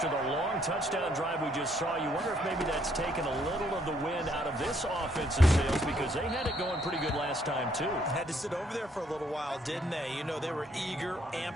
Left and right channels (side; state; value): both; normal; correlation 0.69